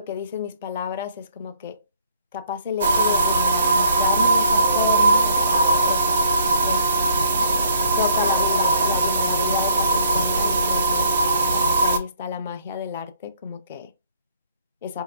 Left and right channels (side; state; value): both; inverted; correlation -0.61